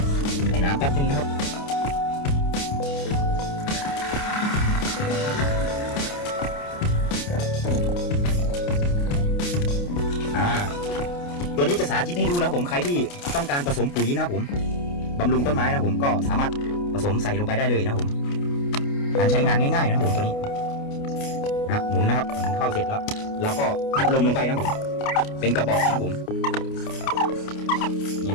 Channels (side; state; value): right; late; 29 ms